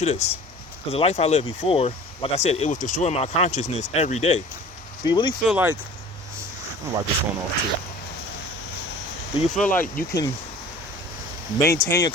you this. Because the life I lived before, like I said, it was destroying my consciousness every day. Do you really feel like, I'm gonna wipe this phone off too. Do you feel like you can maintain your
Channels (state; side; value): normal; both; correlation 0.44